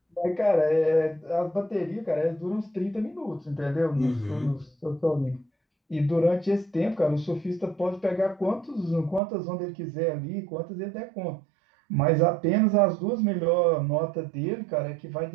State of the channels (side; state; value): left; drops out; at 9.2 s